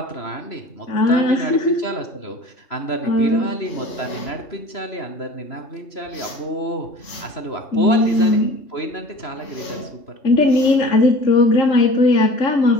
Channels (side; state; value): right; late; 3.0 ms